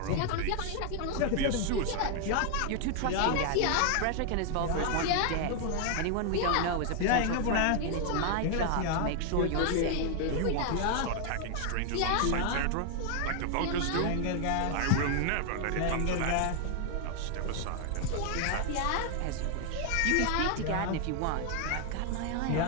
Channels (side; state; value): both; different; correlation 0.00